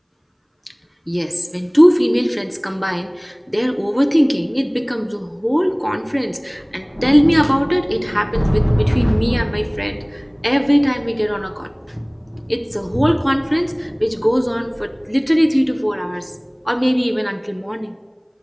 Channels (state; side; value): identical; both; correlation 1.00